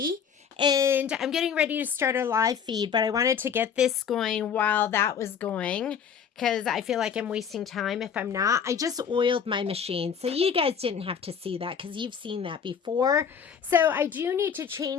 and I'm getting ready to start a live feed, but I wanted to get this going while that was going because I feel like I'm wasting time if I'm not. I just oiled my machine, so you guys didn't have to see that because you've seen that before. So I do need to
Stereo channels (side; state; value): right; quieter; 7.3 dB